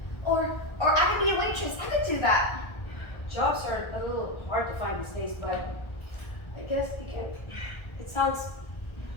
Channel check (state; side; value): late; right; 1.3 ms